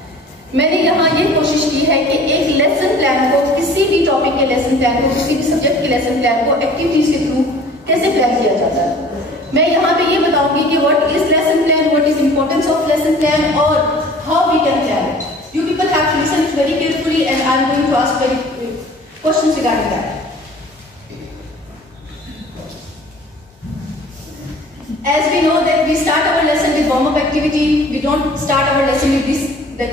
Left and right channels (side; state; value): both; normal; correlation 0.48